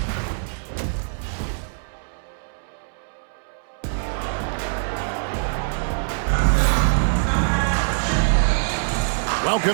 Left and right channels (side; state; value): left; silent; 63 dB below the other